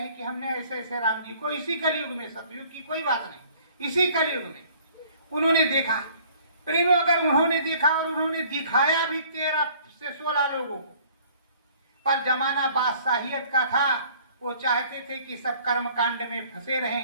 कि हमने ऐसे ऐसे राम जी को इसी कलयुग में, सतयुग की कोई बात नहीं, इसी कलयुग में उन्होंने देखा। प्रेमियों, अगर उन्होंने देखा और उन्होंने दिखाया भी 13 से 16 लोगों को, पर जमाना बादशाहियत का था। वो चाहते थे कि सब कर्म कांड में फंसे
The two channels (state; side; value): inverted; both; correlation -0.55